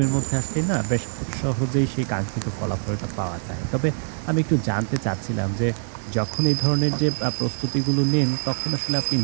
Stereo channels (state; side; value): silent; left; 63 dB below the other